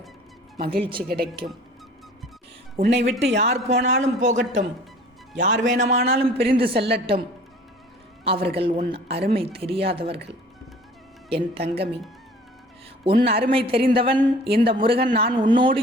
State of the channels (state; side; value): normal; both; correlation 0.48